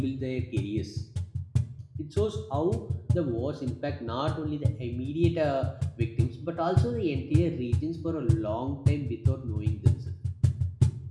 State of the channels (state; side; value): identical; both; correlation 1.00